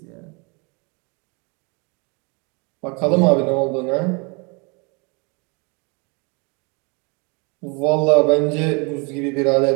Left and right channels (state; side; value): quieter; left; 31.4 dB